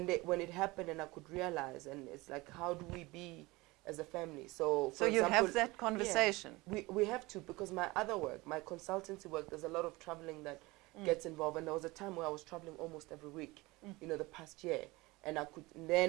it happened, and I could realize, and it's like, how do we be as a family? So, for you example, have that conversation. Yeah, we have to, because my other work, my consultancy work, there's a lot of traveling that gets involved, and there was a time where I was traveling almost every week, you know, the past year, and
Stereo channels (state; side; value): quieter; left; 22.0 dB